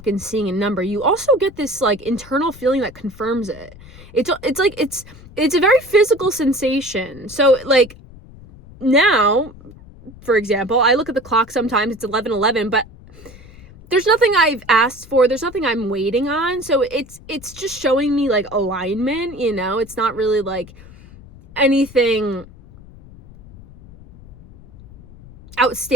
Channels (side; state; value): left; noise; rumble, 20 dB below the sound